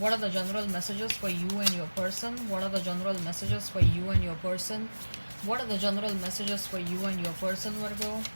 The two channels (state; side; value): inverted; both; correlation -1.00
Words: are the general messages for you and your person? What are the general messages for you and your person? What are the general messages for you and your person, Virgo?